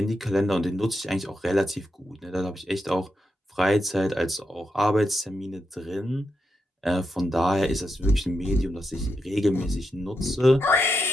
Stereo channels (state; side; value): normal; both; correlation 0.85